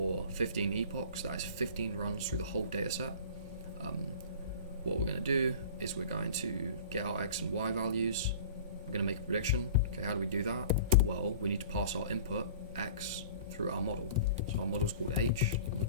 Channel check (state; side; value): inverted; both; correlation -0.42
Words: 15 epochs, that is 15 runs through the whole data set. What we're going to do is we're going to get our x and y values. We're going to make a prediction. Okay, how do we do that? Well, we need to pass our input, x, through our model. So our model is called h. I'm going to